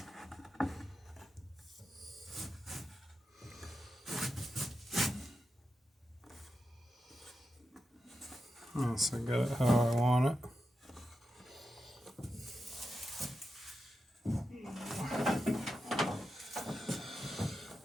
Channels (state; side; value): normal; both; correlation 0.89